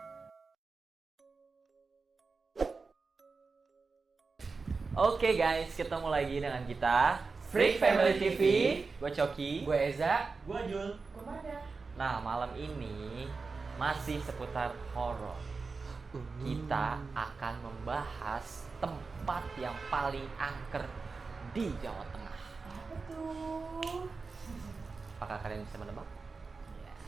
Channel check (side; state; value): left; quieter; 4.4 dB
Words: Oke guys, ketemu lagi dengan kita Freak Family TV. Gue Coki. Gue Eza. Gua Jul. Kemana? Nah, malam ini masih seputar horor. Kita akan membahas tempat yang paling angker di Jawa Tengah. Apa tuh? Apakah kalian bisa menebak?